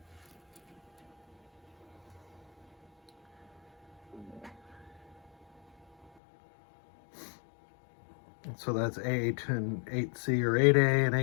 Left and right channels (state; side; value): drops out; right; at 6.1 s